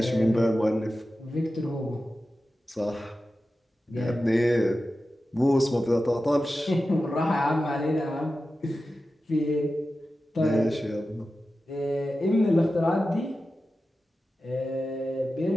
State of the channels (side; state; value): both; normal; correlation 0.93